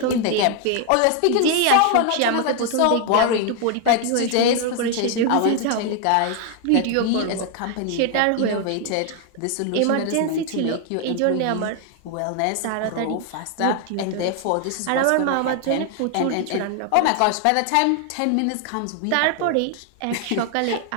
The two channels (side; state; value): both; different; correlation 0.00